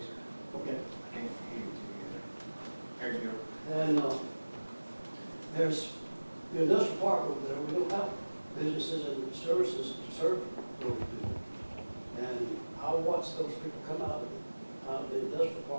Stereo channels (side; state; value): both; inverted; correlation -1.00